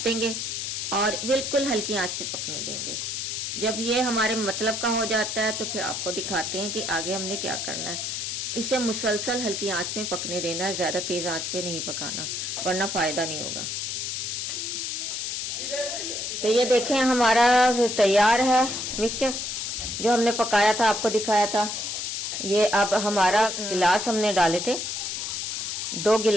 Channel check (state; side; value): noise; left; hiss, 3 dB below the sound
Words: देंगे और बिल्कुल हल्की आंच पे पकने देंगे। जब ये हमारे मतलब का हो जाता है तो फिर आपको दिखाते हैं कि आगे हमने क्या करना है। इसे मुसलसल हल्की आंच में पकने देना है, ज्यादा तेज आंच पे नहीं पकाना, वरना फायदा नहीं होगा। तो ये देखें हमारा तैयार है मिक्सचर जो हमने पकाया था, आपको दिखाया था। ये अब हमारा गिलास हमने डाले थे, 2